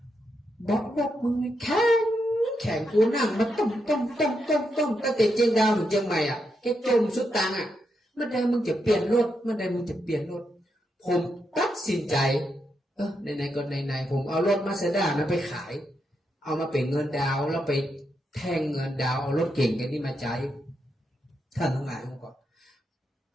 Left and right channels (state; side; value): normal; both; correlation 0.83